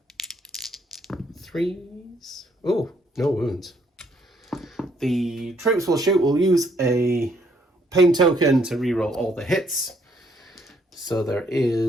3s. Oh, no wounds. The troops will shoot. We'll use a pain token to reroll all the hits. So there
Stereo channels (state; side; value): normal; both; correlation 0.68